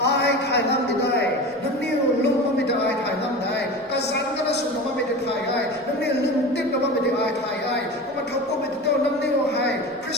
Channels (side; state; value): both; normal; correlation 0.31